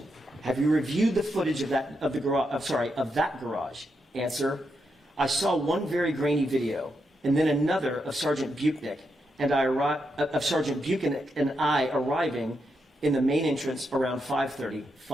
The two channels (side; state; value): both; normal; correlation 0.83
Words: have you reviewed the footage of that garage? Answer, I saw one very grainy video and then another of Sergeant Buchanan and I arriving in the main entrance around 5:30